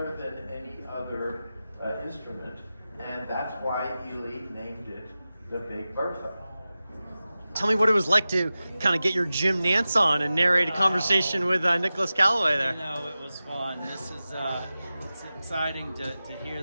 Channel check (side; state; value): both; inverted; correlation -0.95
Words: than any other instrument, and that's why Ely named it the Big Bertha. Tell me what it was like to kind of get your Jim Nance on and narrate a conversation with Nicholas Callaway there. You know, it was fun. This is it's exciting to hear